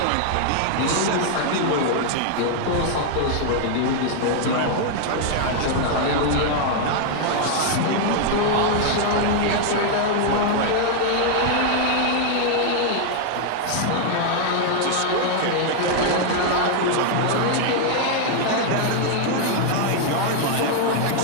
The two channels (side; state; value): both; different; correlation 0.00